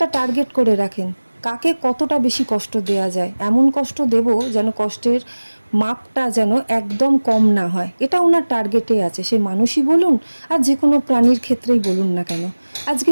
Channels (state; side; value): inverted; both; correlation -1.00